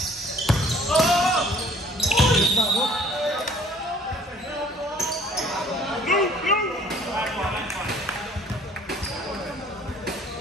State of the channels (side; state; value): both; normal; correlation 0.54